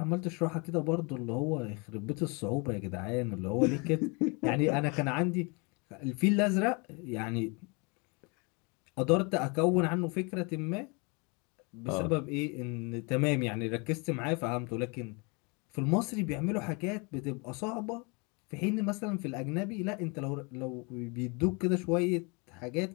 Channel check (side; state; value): right; quieter; 30.9 dB